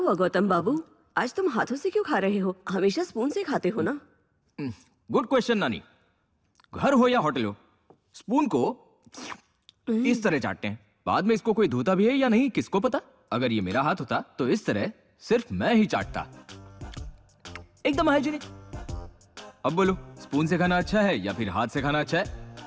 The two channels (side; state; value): both; identical; correlation 1.00